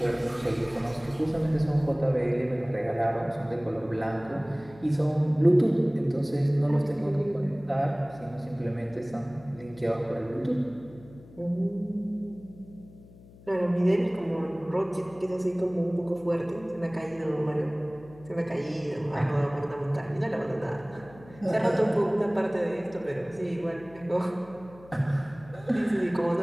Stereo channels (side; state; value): left; noise; hum, 22 dB below the sound